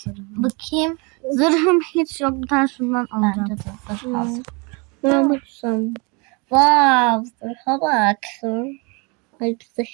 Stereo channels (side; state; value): left; quieter; 30.2 dB